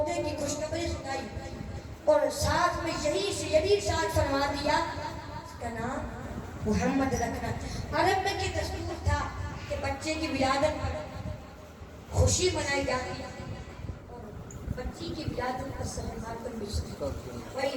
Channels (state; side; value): identical; both; correlation 1.00